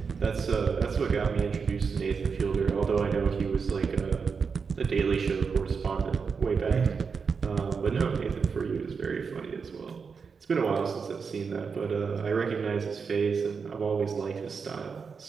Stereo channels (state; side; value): quieter; left; 5.5 dB